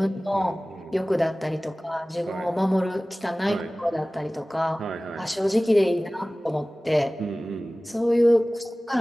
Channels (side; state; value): both; normal; correlation 0.98